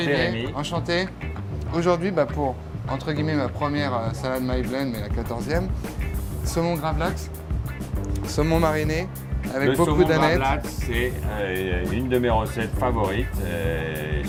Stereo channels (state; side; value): identical; both; correlation 1.00